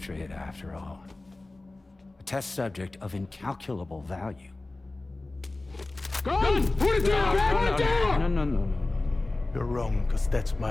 after all. A test subject of incalculable value. Gun! Put it down! Put it down! No. You're wrong, because that's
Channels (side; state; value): right; quieter; 3.0 dB